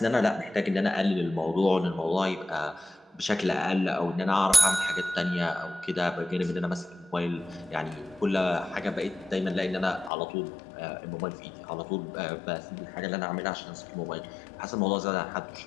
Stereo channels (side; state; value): right; drops out; at 10.1 s